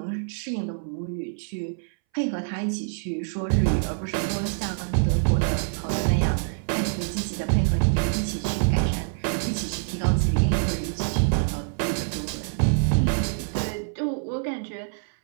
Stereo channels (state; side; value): silent; left; 61 dB below the other